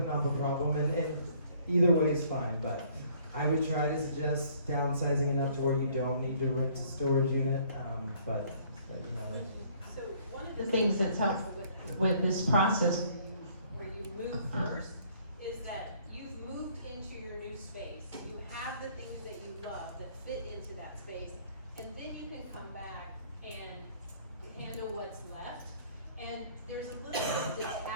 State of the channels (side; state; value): both; inverted; correlation -0.60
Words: up a problem, and either way is fine, but I would try to suggest downsizing enough to where you don't need to rent a storage unit, but. So one of The things that's helpful with this process, where you move first, is that you've moved into your new space. You have the things that you love that fit into that space, and then you can come back and handle what's left. And there's a little bit of